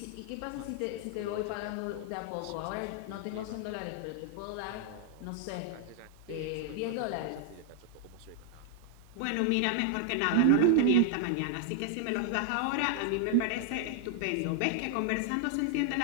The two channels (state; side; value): different; both; correlation 0.00